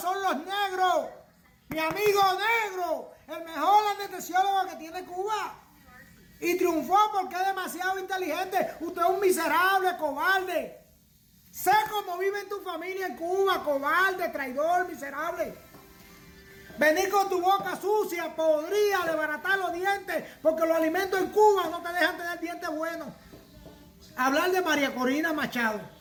los negros. Mi amigo negro, el mejor anestesiólogo que tiene Cuba. Y triunfó porque es demasiado inteligente. Usted es un miserable, cobarde. Sé cómo vive en tu familia en Cuba, cobarde, traidor, miserable. Venir con tu boca sucia, podría desbaratar los dientes, porque los alimentos en Cuba no te dejan tener dientes buenos. Hablar de María Corina Machado.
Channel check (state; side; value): identical; both; correlation 1.00